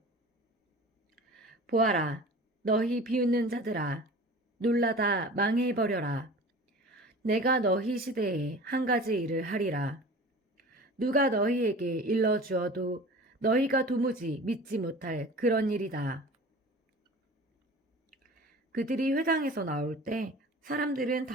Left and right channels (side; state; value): both; normal; correlation 0.40